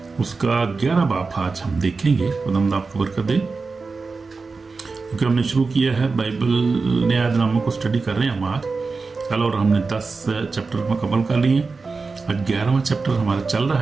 उसका 11 बाब आज हम देखेंगे। खुदा आपको बरकत दे। क्योंकि हमने शुरू किया है बाइबल न्यायनामा को स्टडी कर रहे हैं हम आज कल, और हमने 10 चैप्टर मुकम्मल कर लिए। आज 11वां चैप्टर हमारा चल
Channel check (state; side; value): quieter; left; 4.2 dB